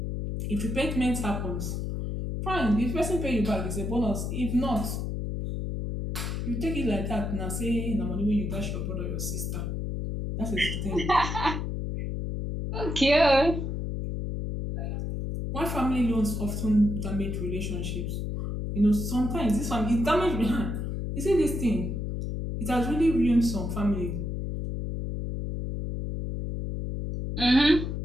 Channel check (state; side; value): noise; left; hum, 3 dB below the sound